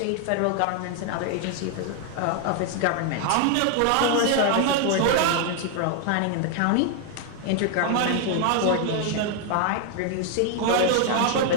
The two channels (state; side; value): different; both; correlation 0.00